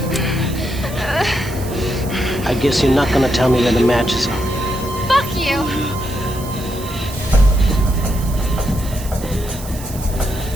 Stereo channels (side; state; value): right; noise; hiss, 15 dB below the sound